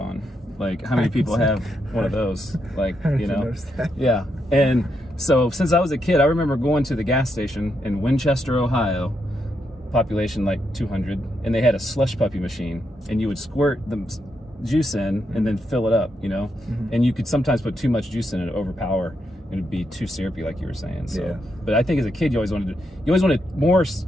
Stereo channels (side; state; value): both; normal; correlation 0.81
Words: Like, how many people have one of those? Like, you know? Yeah. And so since I was a kid, I remember going to the gas station in Winchester, Ohio, population like 200, and they had a slush puppy machine, and you would squirt the juice in and then fill it up, you know, and you could sometimes put too much juice in it, overpower, and it'd be too syrupy, like you were saying. So, but I think as a kid, you always wanted more